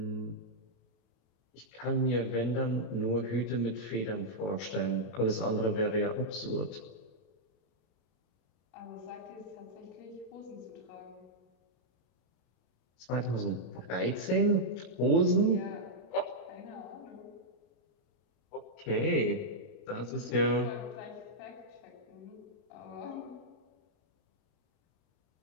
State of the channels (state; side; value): late; right; 33 ms